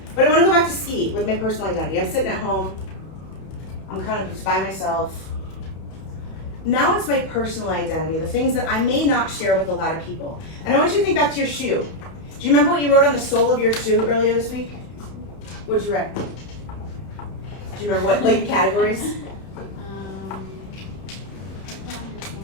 But I want to go back to ski with my personal identity. I'm sitting at home. I'm kind of just by myself. Now it's my personal identity, the things that I may not share with a lot of people. And I want you to think back to your shoe. Do you remember what you wrote on the sole of your shoe earlier this week? What did you write? Do you remember what like categories?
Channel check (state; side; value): late; right; 31 ms